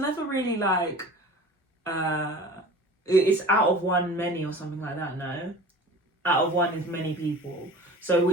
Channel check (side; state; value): both; normal; correlation 0.40